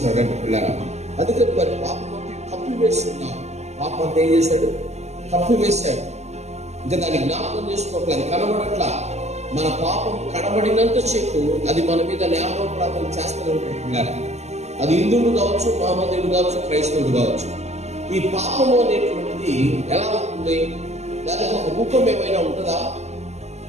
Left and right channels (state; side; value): late; left; 0.33 ms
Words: పిల్లరా. అందుకని మరి పాపం కప్పివేస్తున్నాం. పాపం అంతా ఏం చేశాడు? కప్పివేశాడు. ఇంకా దాన్ని జ్ఞాపకం చేసుకోవట్లేదు, కనబడట్లా. మన పాపం కనబడినంత సేపు అది మన మీద న్యాయోపరాధం చేస్తూనే ఉంటుంది పిల్లరా. అది హిందువులు కావచ్చు, మహమ్మదీయుడు కావచ్చు, క్రైస్తవుడు కావచ్చు. ఈ పాపము అనేటువంటిది ఎలా ఉంటుంది? దానికి ఒక రూపం ఏమైనా ఉంటుందా?